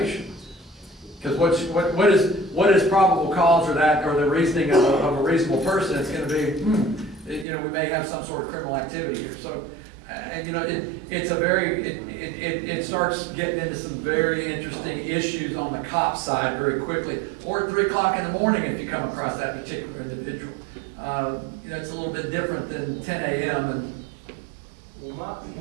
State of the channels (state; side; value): drops out; left; at 7.5 s